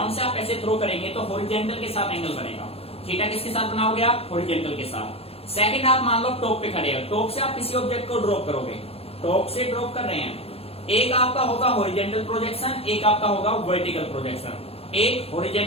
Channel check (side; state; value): right; late; 0.29 ms